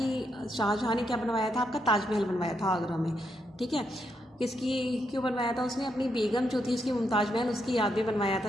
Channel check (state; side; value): normal; both; correlation 0.80